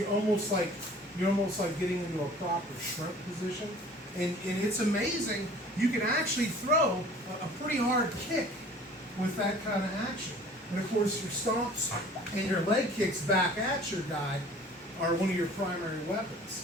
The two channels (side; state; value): both; normal; correlation 0.48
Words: almost like getting into a proper shrimp position. And it's amazing. You can actually throw a pretty hard kick with that kind of action. And of course, your stomps and your leg kicks back at your guy are one of your primary